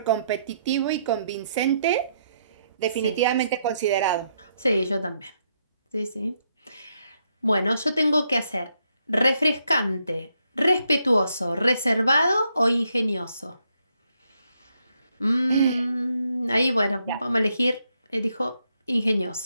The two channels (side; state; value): both; inverted; correlation -0.77